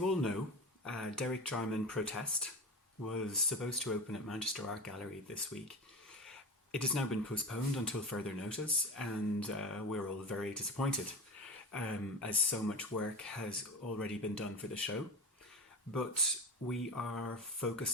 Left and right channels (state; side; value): normal; both; correlation 0.29